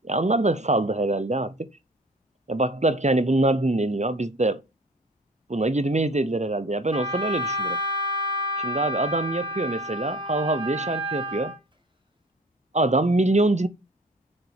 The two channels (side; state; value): both; normal; correlation 0.47